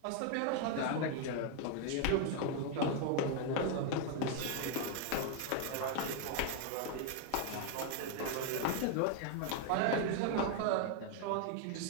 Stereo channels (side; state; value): both; different; correlation 0.01